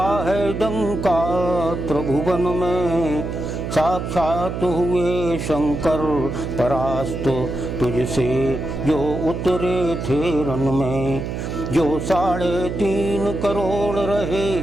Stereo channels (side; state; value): right; noise; hum, 5 dB below the sound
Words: है डंका, त्रिभुवन में साक्षात हुए शंकर परास्त तुझसे जो उतरे थे रण में। जो 3.5 करोड़ रहे